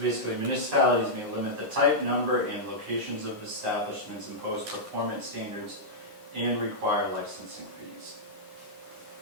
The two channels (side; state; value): left; late; 11 ms